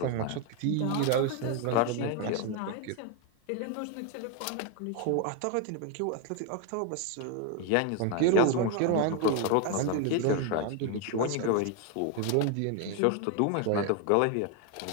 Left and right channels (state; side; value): different; both; correlation 0.01